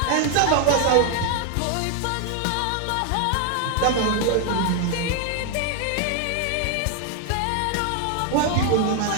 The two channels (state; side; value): different; both; correlation 0.00